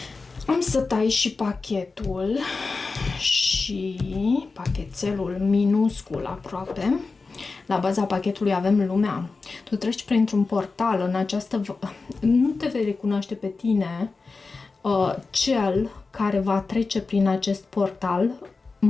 Am să tai și pachetul și pachetelul minuscul aproape. La baza pachetului avem lumea. Tu treci printr-un portal în această... Nu te vei recunoaște pe tine cel care va trece prin acest portal,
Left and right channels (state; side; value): quieter; right; 4.1 dB